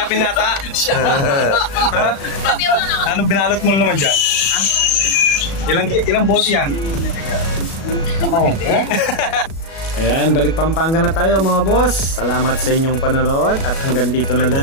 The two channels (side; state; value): right; late; 37 ms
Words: pinata. Ha? Sabi mo naman. Anong binalot mo naman dyan? Ha? Ilang bote yan? Ayan, balik Pampanga na tayo mga boss. Salamat sa inyong panonood at hanggang dito na